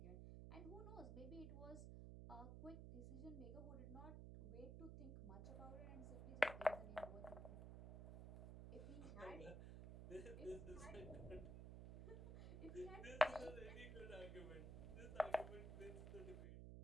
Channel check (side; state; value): right; noise; hum, 7 dB below the sound